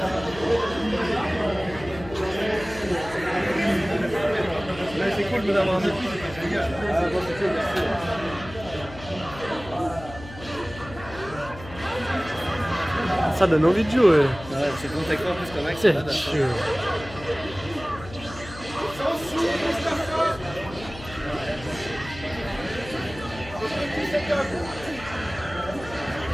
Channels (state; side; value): noise; left; hum, 15 dB below the sound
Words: C'est cool d'avoir un équipe. Ça donne envie de jouer. Ouais, c'est bon écran en plus qu'on a que C'est ça. chaud.